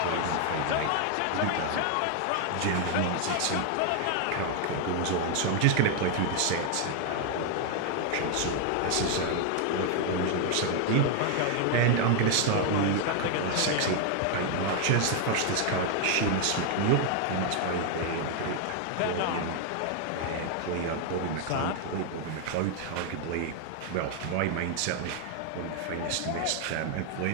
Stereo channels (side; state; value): both; different; correlation 0.00